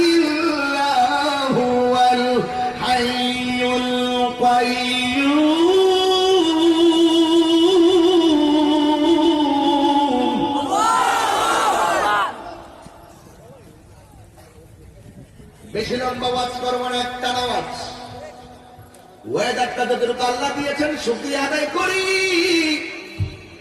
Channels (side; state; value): both; identical; correlation 1.00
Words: ইল্লা হুয়াল হাইয়ুল কাইয়্যুম। বেশি লম্বা ওয়াজ করবো না, একটা আওয়াজ। ওয়েদারটা যতটুকু আল্লাহ দিয়েছেন শুকরিয়া আদায় করি।